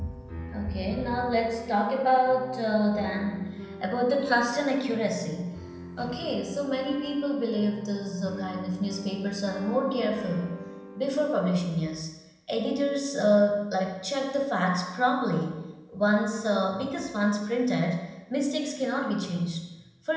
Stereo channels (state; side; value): identical; both; correlation 1.00